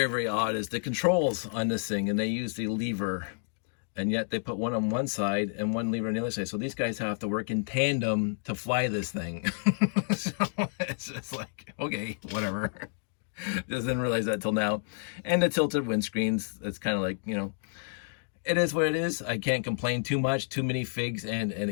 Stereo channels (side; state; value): right; silent; digital silence